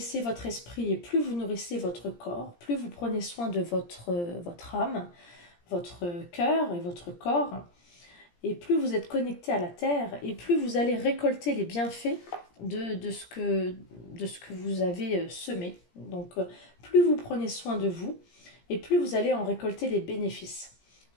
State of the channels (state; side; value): late; right; 17 ms